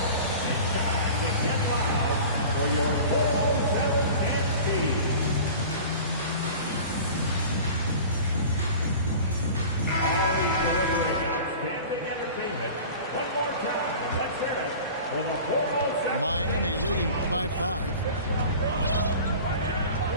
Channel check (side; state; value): both; inverted; correlation -0.39